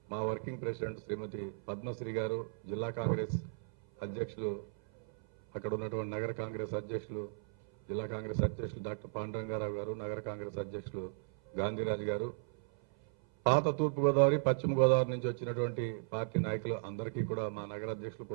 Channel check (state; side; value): silent; left; 54 dB below the other